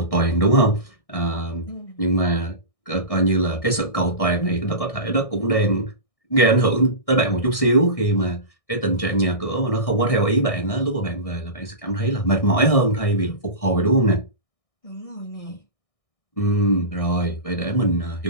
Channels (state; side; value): late; right; 1.6 ms